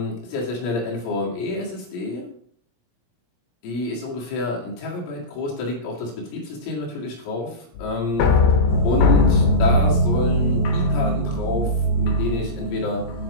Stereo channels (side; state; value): right; late; 17 ms